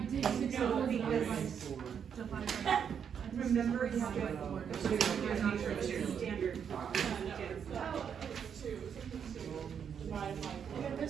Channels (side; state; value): left; quieter; 7.7 dB